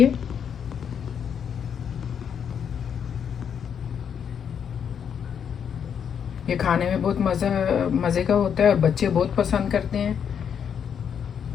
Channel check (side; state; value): right; quieter; 7.8 dB